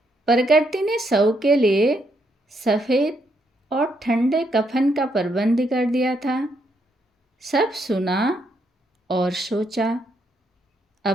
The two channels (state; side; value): normal; both; correlation 0.76